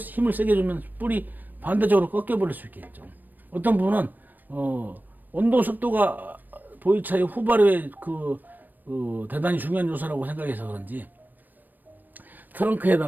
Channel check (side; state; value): left; late; 0.089 ms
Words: 세게 주면 뿔이 반대쪽으로 꺾여버릴 수 있겠죠. 어떤 분은 온도, 습도가 보이차의 후발효에 대단히 중요한 요소라고 생각해서 그런지